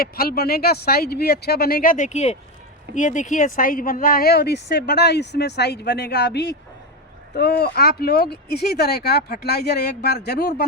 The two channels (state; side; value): normal; both; correlation 0.12